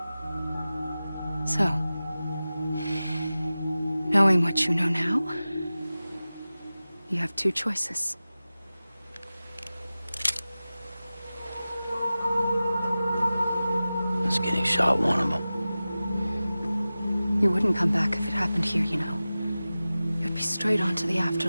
So, knowing what you know now, you have two choices. Is getting shot one of them? You wouldn't come back if it happened here, you know. You'd be straight on to the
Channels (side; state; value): both; inverted; correlation -0.96